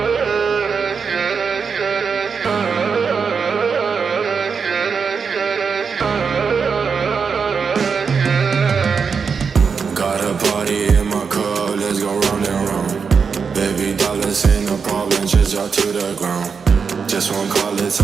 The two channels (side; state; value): left; quieter; 5.8 dB